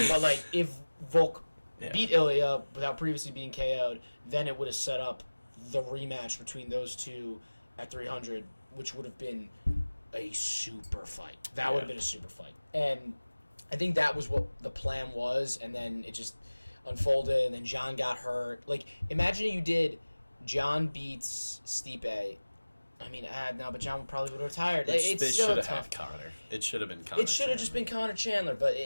like, if Volk beat Ilya without previously being KO'd, then it would have set up the rematch between those two at 300, which would have been a super fight. That would have been a super fight. And I think that was what the plan was, and then it just unfolded, and then John got hurt. Like, imagine you did John beats Stipe. I mean, no, but John probably would have retired. They should have had Conor. It should have been Conor. It should have just been Conor Chandler, but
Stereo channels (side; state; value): both; inverted; correlation -1.00